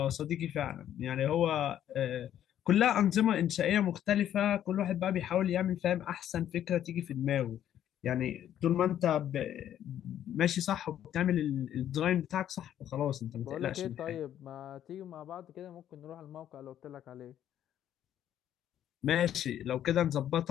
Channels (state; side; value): quieter; right; 10.9 dB